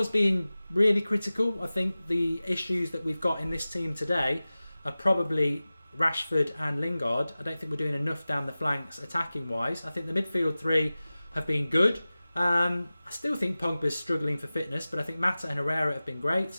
being really critical, I think the issues that we've got in this team today are probably Rashford and Lingard. I don't think we're doing enough down the flanks attacking wise. I think the midfield 3 have been good. I still think Pogba's struggling for fitness, but I think Mata and Herrera have been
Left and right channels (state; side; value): inverted; both; correlation -0.97